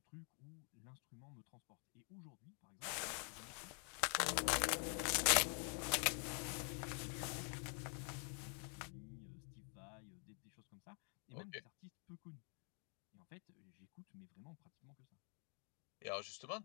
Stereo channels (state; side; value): quieter; right; 39.0 dB